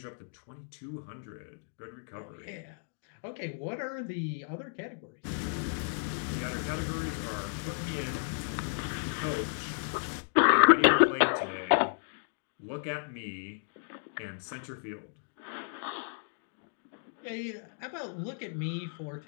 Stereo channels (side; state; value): right; silent; digital silence